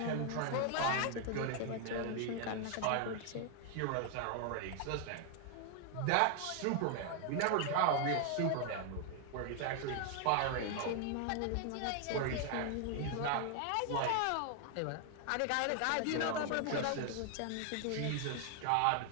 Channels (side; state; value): both; different; correlation 0.00